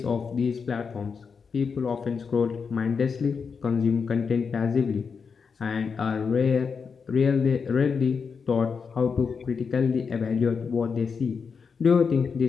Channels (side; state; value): right; quieter; 5.7 dB